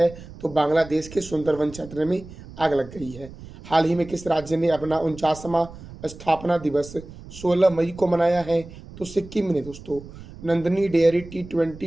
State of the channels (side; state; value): right; noise; rumble, 16 dB below the sound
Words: तो बांग्लादेश के सुंदरवन क्षेत्र में आग लग गई है। हाल ही में किस राज्य ने अपना 49वां स्थापना दिवस 16 मई को मनाया है? तो सिक्किम ने दोस्तों। Nandini dairy